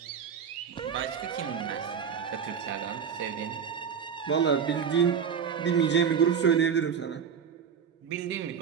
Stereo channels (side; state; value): left; quieter; 7.1 dB